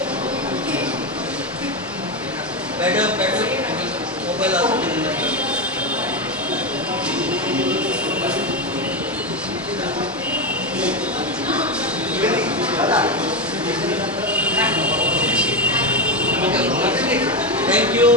ম্যাডাম মোবাইল আসতে থ্যাংক ইউ।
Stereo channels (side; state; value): both; normal; correlation 0.12